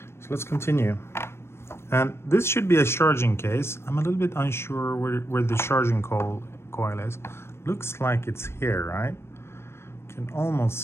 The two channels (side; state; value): right; late; 0.12 ms